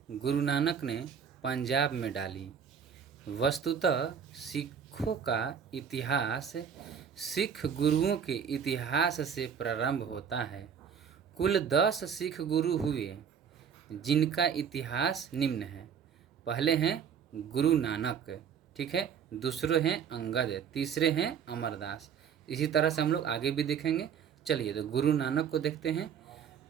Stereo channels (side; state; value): left; quieter; 7.5 dB